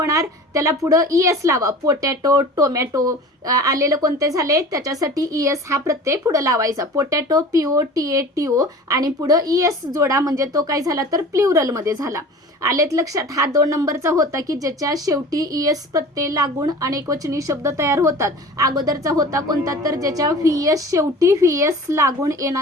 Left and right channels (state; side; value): normal; both; correlation 0.40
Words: त्याला पुढं ES लावा. पोटॅटो, टोमॅटो आलेलं कोणते झाले, त्याच्यासाठी ES हा प्रत्यय पुढं लावायचा. पोटॅटो POTATO आणि पुढं ES जोडा, म्हणजे तो काय झाला तर प्ल्युरलमध्ये झाला. आलेत लक्षात. हा 2 नंबरचा होता की ज्याच्या शेवटी ES प्रत्यय लागून अनेकवचनी शब्द तयार होतात. अगोदरचा होता कोणता तर ज्याच्या VS शेवटी VS लागून